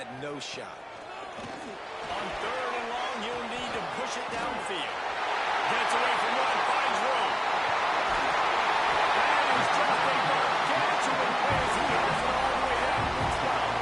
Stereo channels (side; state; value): both; identical; correlation 1.00